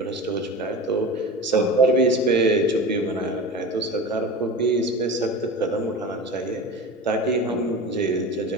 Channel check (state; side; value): normal; both; correlation 0.30